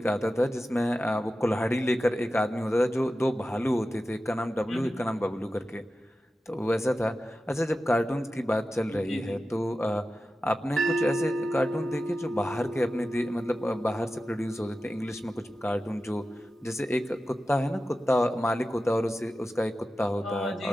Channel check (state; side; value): normal; both; correlation 0.93